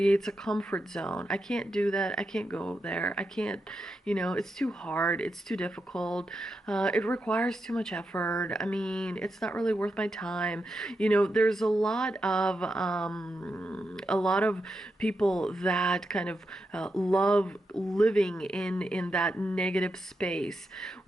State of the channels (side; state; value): both; normal; correlation 0.86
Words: a comfort zone. I can't do that. I can't go there. I can't, it's too hard. It's too difficult. It requires too much effort. I mean, it's not really worth my time. There's a lot of people that kind of love living in that negative space,